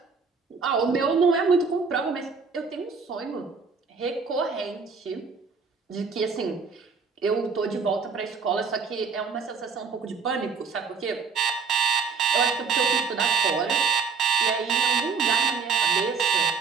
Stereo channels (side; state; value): left; quieter; 5.3 dB